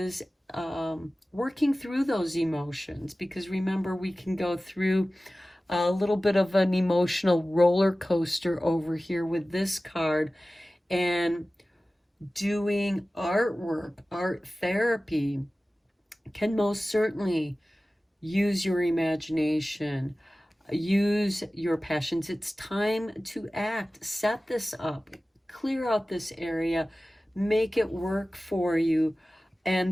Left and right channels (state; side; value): normal; both; correlation 0.96